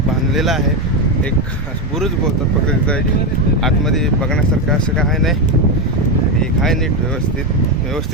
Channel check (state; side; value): normal; both; correlation 0.10